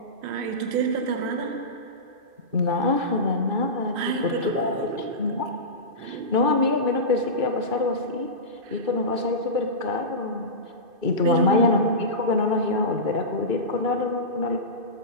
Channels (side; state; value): left; late; 2.5 ms